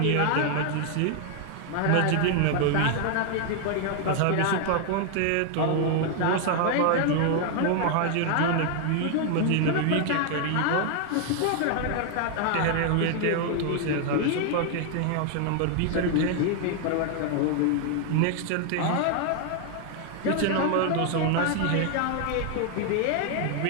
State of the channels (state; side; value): different; both; correlation 0.00